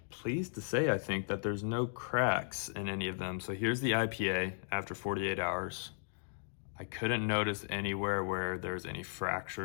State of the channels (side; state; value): right; silent; digital silence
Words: pleased to say I think that there's no cracks in any of them. So here's the IPA after 48 hours. I couldn't notice anywhere where there's any